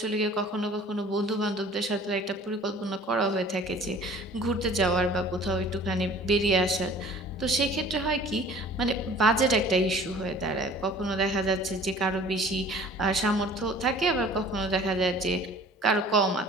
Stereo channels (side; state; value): both; normal; correlation 0.48